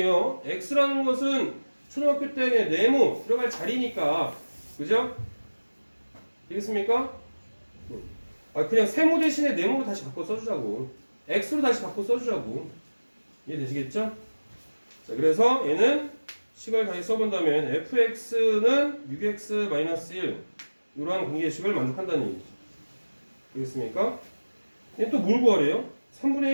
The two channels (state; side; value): inverted; both; correlation -1.00